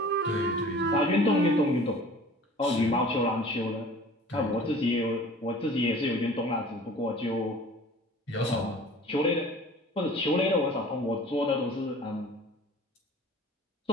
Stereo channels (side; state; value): both; normal; correlation 0.45